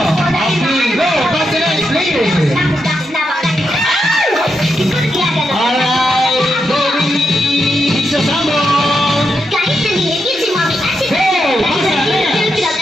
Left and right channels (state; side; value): normal; both; correlation 0.84